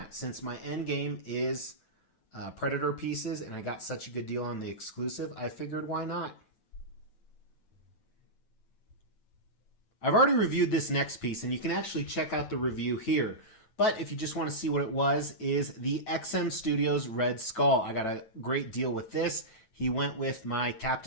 Since my end game is Predator pieces, and I got such a good deal on the exclusive, I figured why not? I've already reviewed this next piece, and you can actually check out the review here. But if you just want to see what it was, is the XM Studios Red Skull. I got a great deal with this. He went with my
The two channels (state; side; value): late; right; 9.1 ms